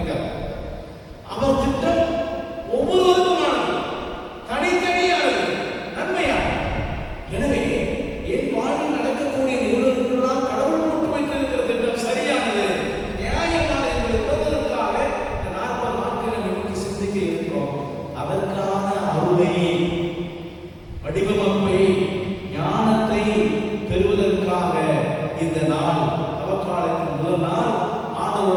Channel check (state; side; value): identical; both; correlation 1.00